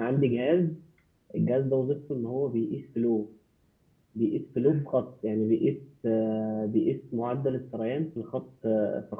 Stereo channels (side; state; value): both; identical; correlation 1.00